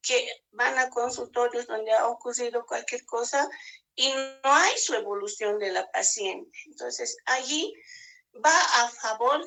que van a consultorios donde ha ocurrido cualquier cosa y no hay su evolución de la paciente. Entonces allí va a favor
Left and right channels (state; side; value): identical; both; correlation 1.00